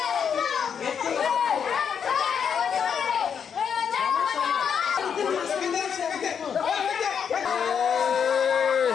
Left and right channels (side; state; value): right; quieter; 7.3 dB